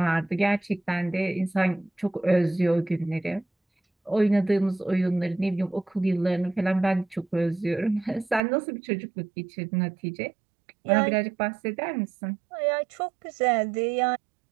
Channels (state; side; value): drops out; left; at 8.4 s